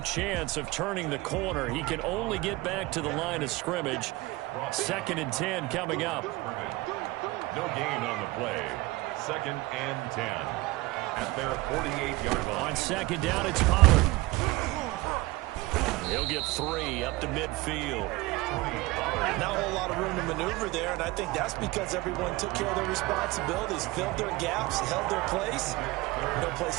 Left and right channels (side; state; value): left; quieter; 20.7 dB